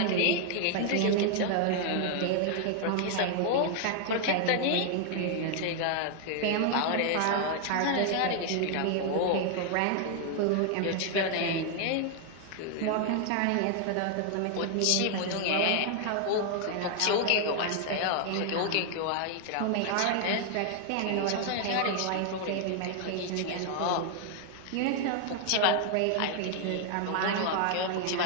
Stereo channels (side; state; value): both; different; correlation 0.00